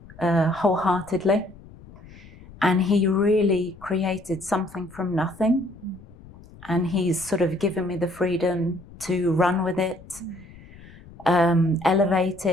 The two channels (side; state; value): left; noise; rumble, 21 dB below the sound